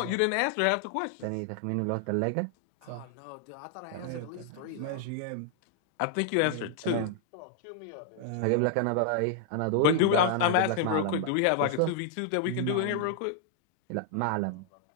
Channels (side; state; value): both; different; correlation -0.01